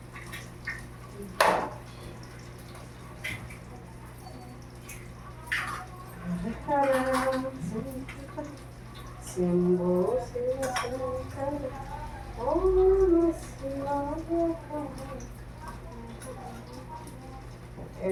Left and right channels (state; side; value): identical; both; correlation 1.00